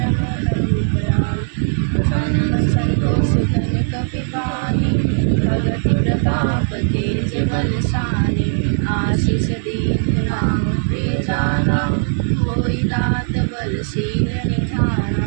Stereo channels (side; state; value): left; silent; digital silence